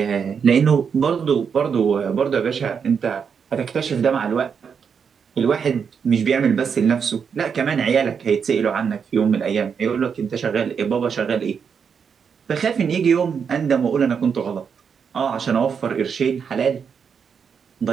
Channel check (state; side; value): quieter; left; 6.6 dB